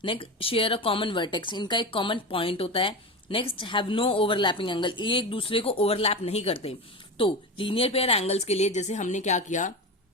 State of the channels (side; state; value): both; normal; correlation 0.23